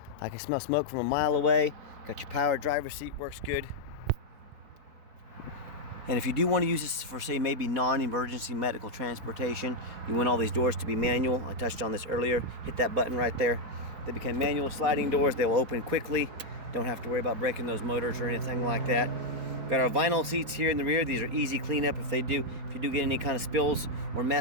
I can smell smoke from a mile away. Got your power driver's seat, works good. And if you do want to use this for, say, maybe non-emergency medical transportation, you want all these doors to be manual. I touched on this earlier. Hit that button right there. They become manual sliding doors. They'll open quickly. Don't have to worry about breaking those motors or anything like that. Got our vinyl seats here in the rear. These are easy cleanup if you do get any kind of spills or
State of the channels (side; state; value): left; late; 4.3 ms